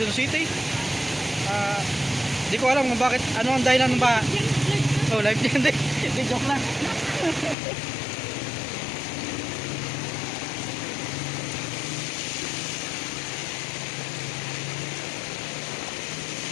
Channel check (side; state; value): right; drops out; at 7.6 s